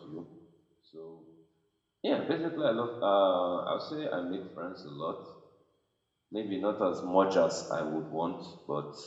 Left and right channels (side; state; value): both; identical; correlation 1.00